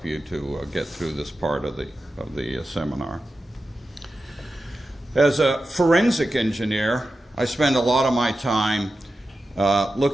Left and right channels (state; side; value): normal; both; correlation 0.92